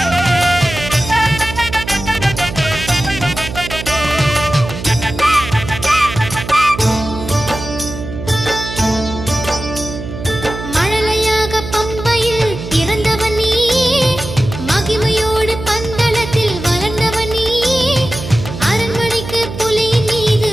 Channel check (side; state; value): right; noise; hum, 9 dB below the sound